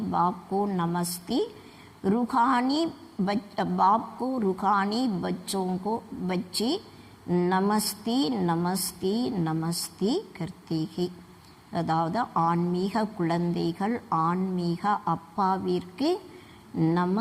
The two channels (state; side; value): identical; both; correlation 1.00